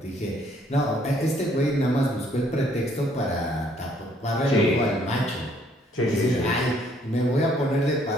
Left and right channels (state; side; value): normal; both; correlation 0.65